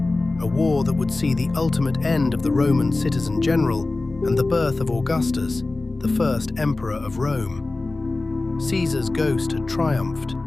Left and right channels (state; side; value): quieter; right; 3.2 dB